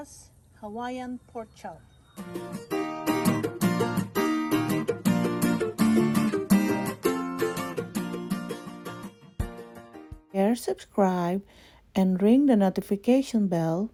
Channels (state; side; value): identical; both; correlation 1.00